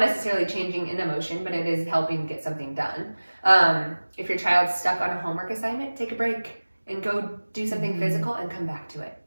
necessarily changing an emotion, but it is helping get something done. If your child's stuck on a homework assignment, take a break and go do something physical and come back to it.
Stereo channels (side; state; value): both; inverted; correlation -1.00